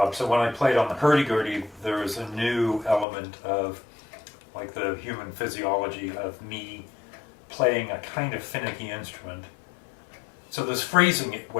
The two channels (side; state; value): right; drops out; at 3.1 s